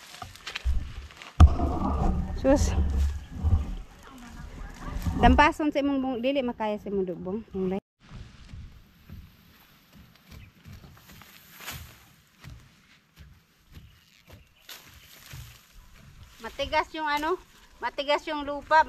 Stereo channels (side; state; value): both; identical; correlation 1.00